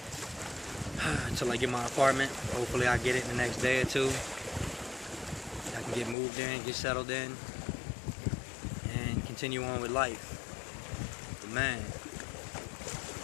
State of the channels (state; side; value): drops out; right; at 6.2 s